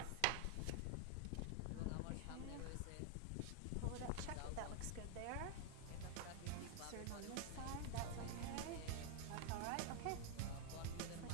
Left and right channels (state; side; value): different; both; correlation 0.00